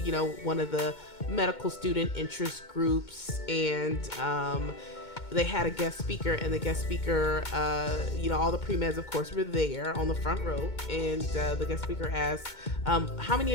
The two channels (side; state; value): right; late; 2.2 ms